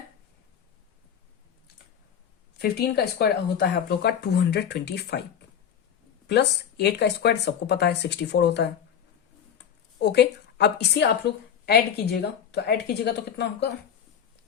15 का स्क्वायर होता है आप लोग का 225 प्लस 8 का स्क्वायर सबको पता है 64 होता है। ओके, अब इसे आप लोग ऐड कीजिएगा, तो ऐड कीजिएगा तो कितना होगा,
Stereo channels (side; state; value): right; quieter; 8.5 dB